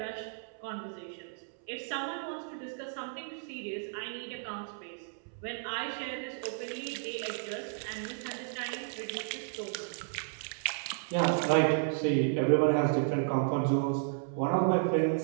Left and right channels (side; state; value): left; silent; 56 dB below the other